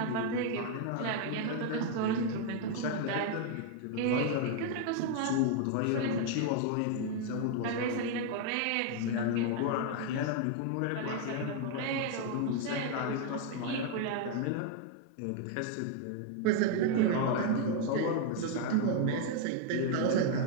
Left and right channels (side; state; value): both; different; correlation 0.00